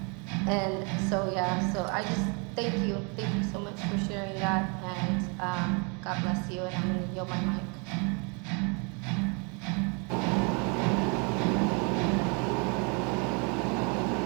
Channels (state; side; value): quieter; left; 33.9 dB